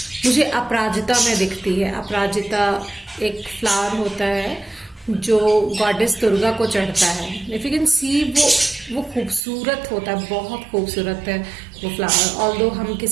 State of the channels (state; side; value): drops out; left; at 9.4 s